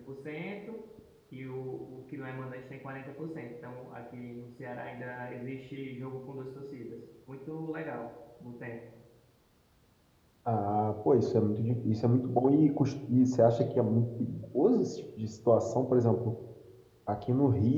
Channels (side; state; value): both; identical; correlation 1.00